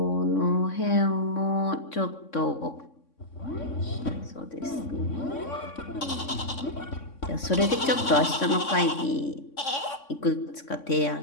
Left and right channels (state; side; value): late; right; 3.6 ms